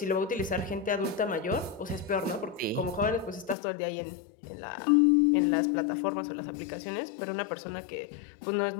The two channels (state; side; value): drops out; right; at 3.6 s